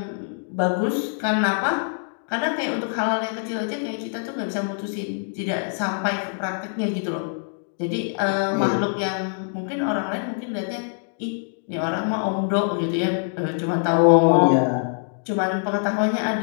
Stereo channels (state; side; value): silent; right; digital silence